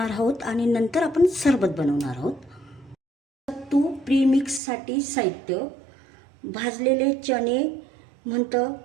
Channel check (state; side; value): drops out; left; at 4.6 s